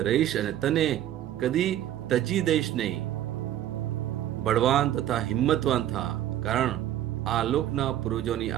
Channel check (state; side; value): quieter; left; 12.1 dB